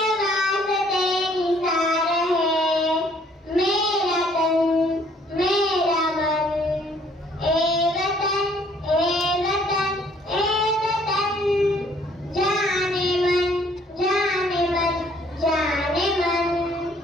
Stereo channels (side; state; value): both; normal; correlation 0.61